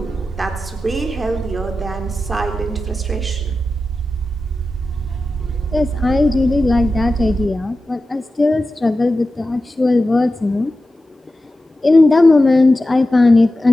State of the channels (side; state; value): both; normal; correlation 0.93